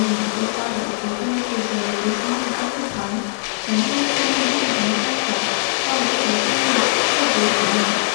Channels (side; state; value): right; silent; digital silence